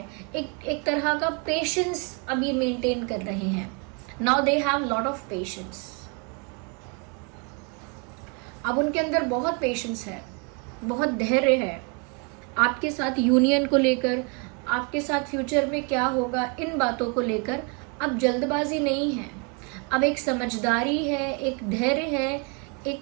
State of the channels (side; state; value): left; quieter; 33.6 dB